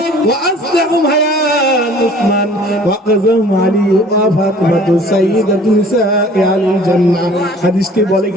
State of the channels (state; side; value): normal; both; correlation 0.51